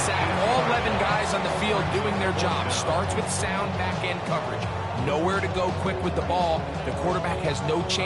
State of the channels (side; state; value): both; identical; correlation 1.00